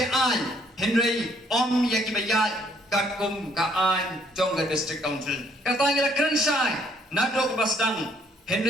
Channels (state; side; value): normal; both; correlation 0.65